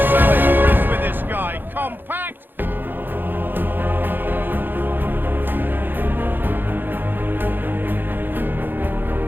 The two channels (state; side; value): late; left; 0.094 ms